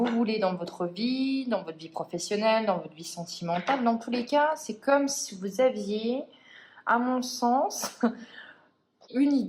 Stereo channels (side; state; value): both; identical; correlation 1.00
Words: voulez dans votre vie professionnelle, dans votre vie sentimentale. Dans tous les cas, c'est comme si vous aviez, à mon sens, une